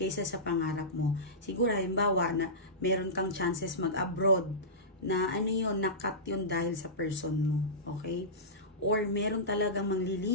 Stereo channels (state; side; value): normal; both; correlation -0.17